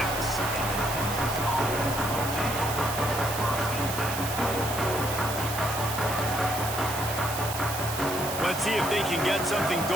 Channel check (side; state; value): right; noise; hiss, 7 dB below the sound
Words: Let's see if they can get something